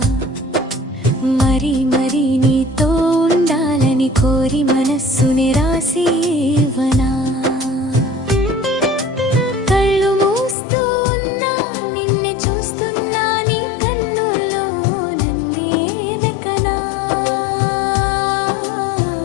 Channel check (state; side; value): drops out; right; at 10.6 s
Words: మరి మరి నీతో ఉండాలని కోరి మనస్సుని రాసి ఇవ్వనా కళ్ళు మూస్తూ ఉన్నా నిన్నే చూస్తున్నా నీ కన్నుల్లో నన్నే వెకనా